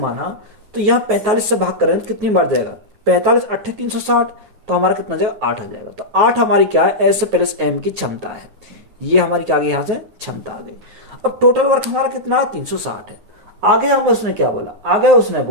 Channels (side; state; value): left; late; 9.3 ms